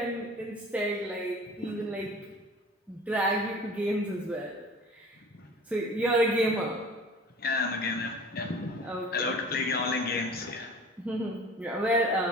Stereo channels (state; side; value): normal; both; correlation 0.42